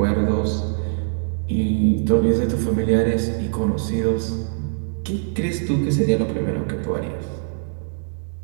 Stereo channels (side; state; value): left; silent; 64 dB below the other